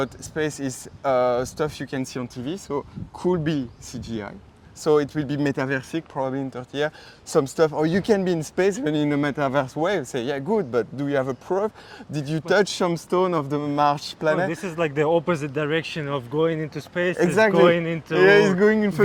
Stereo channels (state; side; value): identical; both; correlation 1.00